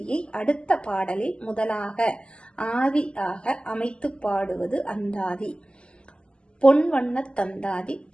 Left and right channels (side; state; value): right; late; 0.051 ms